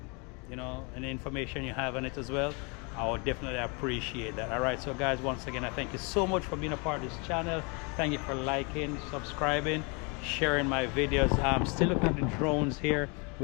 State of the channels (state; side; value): quieter; right; 31.9 dB